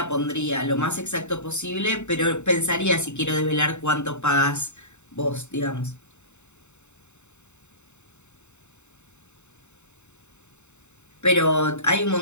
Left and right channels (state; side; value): late; right; 0.83 ms